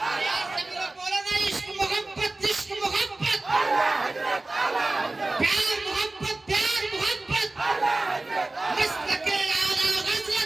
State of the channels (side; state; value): left; quieter; 3.0 dB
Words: यार सभी लोग बोलो ना, इश्क मोहब्बत, इश्क मोहब्बत। प्यार मोहब्बत, प्यार मोहब्बत। मसलके आला